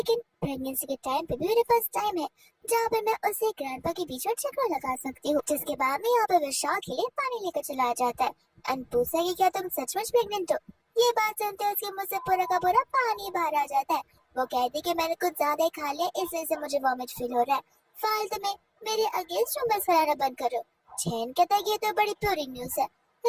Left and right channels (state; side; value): identical; both; correlation 1.00